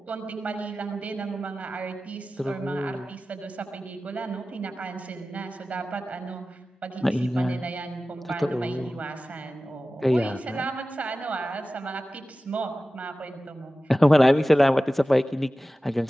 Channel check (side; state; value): both; normal; correlation 0.95